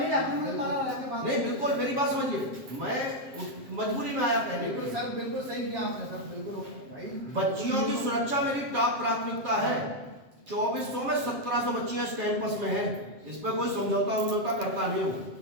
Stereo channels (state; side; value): late; left; 7.7 ms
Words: ही जाता हूँ, मारा वाला के बाद। नहीं बिल्कुल मेरी बात समझिए, मैं मजबूरी में आया पहले। बिल्कुल सर बिल्कुल सही किया आपने सर, बिल्कुल भाई। बच्चियों की सुरक्षा मेरी टॉप प्राथमिकता है। 2400 में 1700 बच्चियां इस कैंपस में हैं, इस पर कोई समझौता करता नहीं हूँ।